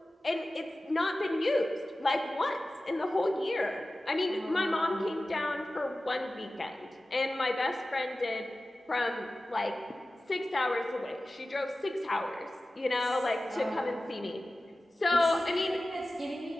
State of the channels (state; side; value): normal; both; correlation 0.95